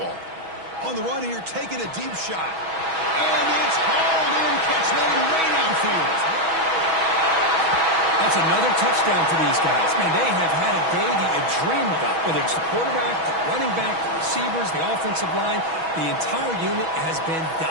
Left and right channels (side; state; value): left; late; 6.2 ms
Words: On the run here, taking a deep shot. And it's hauled in, catch made way downfield. That's another touchdown for these guys. Man, they have had a day that you dream about. Whether it's the quarterback, the running back, the receivers, the offensive line, the entire unit has been